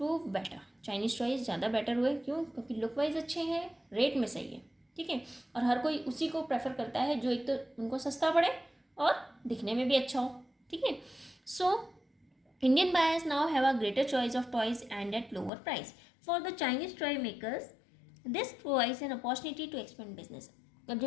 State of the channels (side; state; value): right; drops out; at 15.5 s